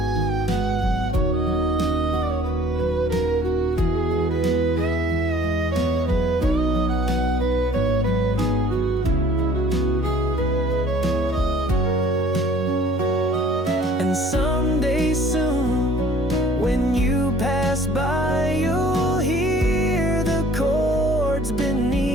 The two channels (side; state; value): both; normal; correlation 0.54